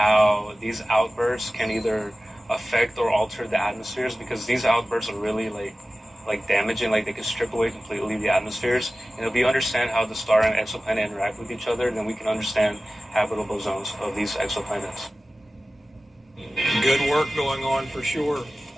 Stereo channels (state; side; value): normal; both; correlation 0.96